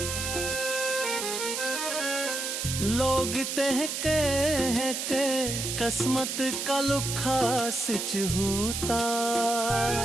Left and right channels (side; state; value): right; noise; hiss, 3 dB below the sound